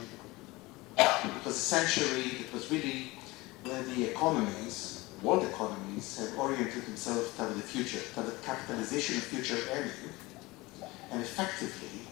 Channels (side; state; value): right; quieter; 21.7 dB